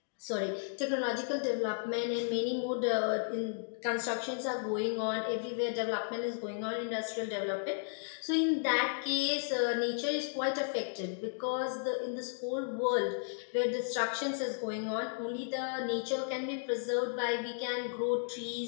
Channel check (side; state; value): right; silent; digital silence